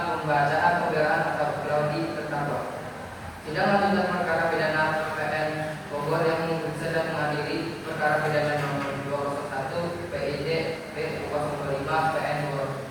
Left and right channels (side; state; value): both; identical; correlation 1.00